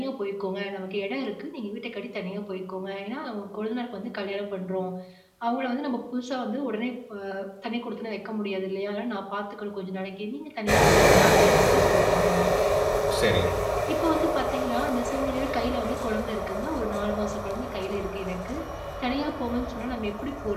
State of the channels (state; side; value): identical; both; correlation 1.00